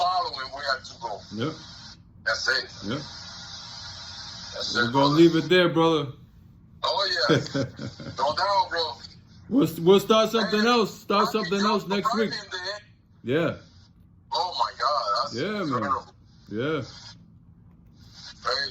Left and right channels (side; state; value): both; identical; correlation 1.00